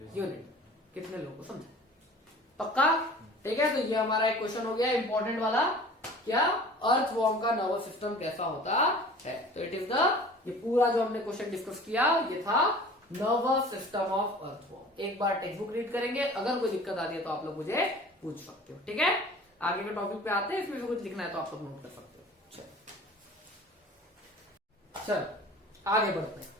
unit. कितने लोगों को समझा, पक्का, ठीक है। तो ये हमारा एक क्वेश्चन हो गया इंपॉर्टेंट वाला, क्या अर्थवॉर्म का नर्वस सिस्टम कैसा होता है। तो इट इज द, ये पूरा जो हमने क्वेश्चन डिस्कस किया ये था नर्वस सिस्टम ऑफ अर्थवॉर्म। एक बार टेक्स्ट बुक रीड करेंगे, अगर कोई दिक्कत आती है तो आप लोग मुझे पूछ सकते हो, ठीक है। आगे के टॉपिक पे आते हैं, इसमें कुछ लिखना है तो आप लोग नोट कर सकते हो। चल आगे बढ़ते हैं।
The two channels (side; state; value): both; normal; correlation 0.44